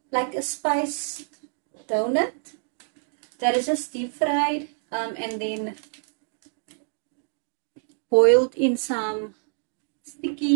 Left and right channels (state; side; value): silent; left; digital silence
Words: like a spiced donut that is just deep fried and then boiled in some